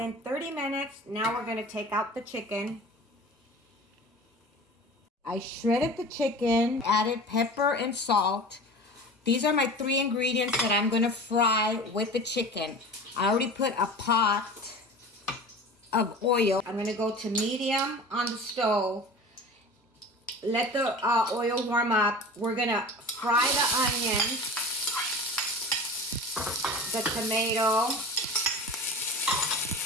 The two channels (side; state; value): both; normal; correlation 0.36